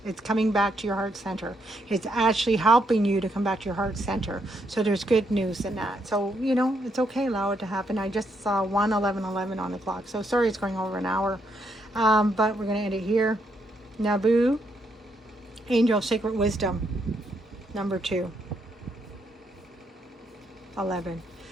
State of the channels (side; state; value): both; normal; correlation 0.76